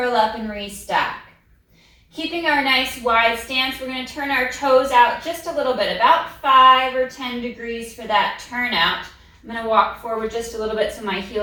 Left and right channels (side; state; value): both; identical; correlation 1.00